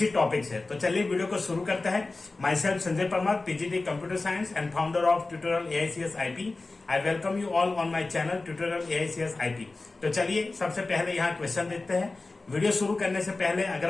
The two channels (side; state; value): right; quieter; 3.4 dB